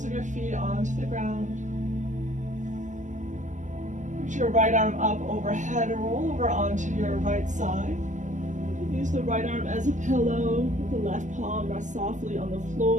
of your feet onto the ground. Reach your right arm up overhead, roll over onto your right side. Use the right arm as a pillow, with the left palm rest softly on the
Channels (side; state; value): left; late; 0.36 ms